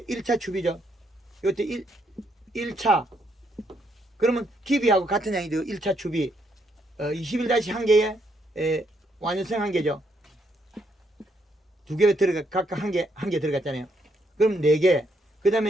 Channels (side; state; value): both; normal; correlation 0.75